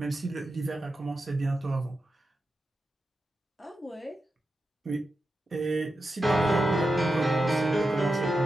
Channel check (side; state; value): both; normal; correlation 0.89